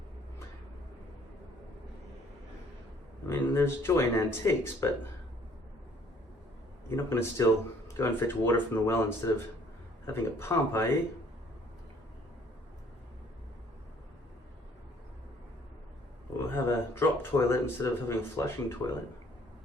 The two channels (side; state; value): both; normal; correlation 0.59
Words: I mean, there's joy in antiques, but you're not going to still go and fetch water from the well instead of having a pump, are you? Or have a drop toilet instead of having a flushing toilet.